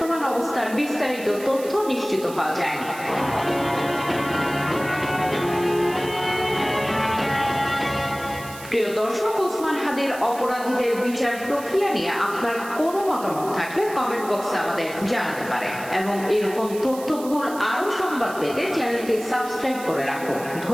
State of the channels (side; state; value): right; noise; hiss, 16 dB below the sound